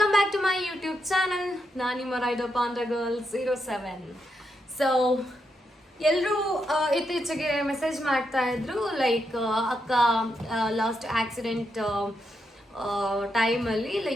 back to my YouTube channel. ನಾನು ನಿಮ್ಮ ರೈಡರ್ ಪಾಂಡ್ರ ಗರ್ಲ್ 07. ಸೊ ಎಲ್ಲರೂ ಇತ್ತೀಚೆಗೆ ಮೆಸೇಜ್ ಮಾಡ್ತಾ ಇದ್ರು, ಲೈಕ್ ಅಕ್ಕ ಲಾಸ್ಟ್ ಆಕ್ಸಿಡೆಂಟ್ ಟೈಮಲ್ಲಿ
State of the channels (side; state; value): both; normal; correlation 0.82